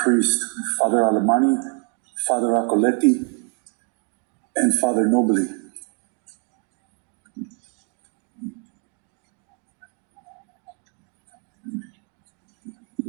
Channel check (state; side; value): quieter; left; 39.4 dB